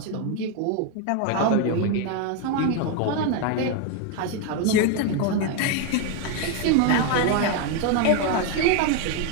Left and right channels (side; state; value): both; different; correlation 0.01